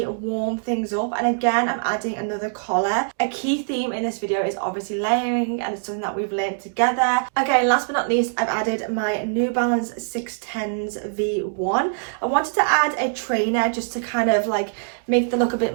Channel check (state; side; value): silent; left; digital silence